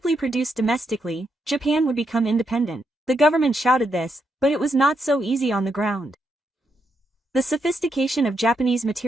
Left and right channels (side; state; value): both; normal; correlation 0.80